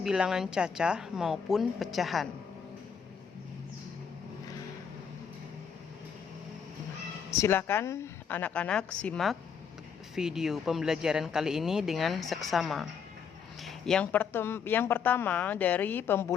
bilangan cacah maupun pecahan. Silakan anak-anak simak video pembelajaran kali ini dengan seksama. Yang pertama dari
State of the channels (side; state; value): right; quieter; 6.8 dB